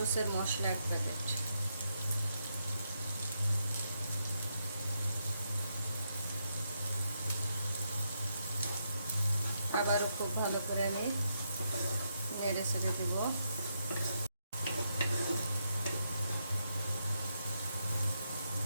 মশলা 1 প্যাকেট। আবারও খুব ভালো করে আমি নেড়ে ছেড়ে দেব।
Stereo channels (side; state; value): both; inverted; correlation -0.81